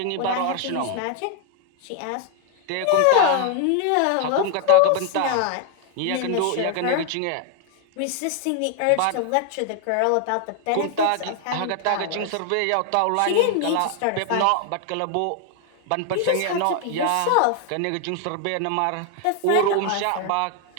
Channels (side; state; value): both; different; correlation 0.00